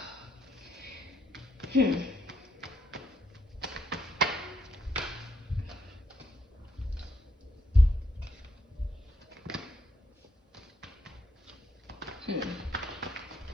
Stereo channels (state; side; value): normal; both; correlation 0.76